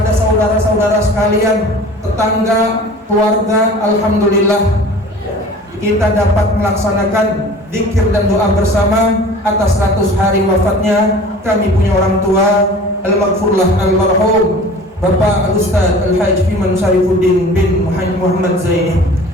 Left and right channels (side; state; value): both; normal; correlation 0.43